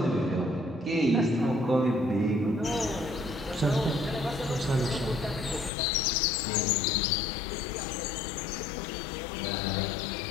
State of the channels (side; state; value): right; drops out; at 5.7 s